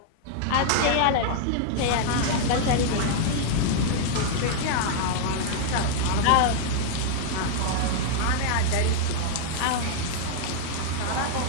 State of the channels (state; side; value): different; both; correlation -0.01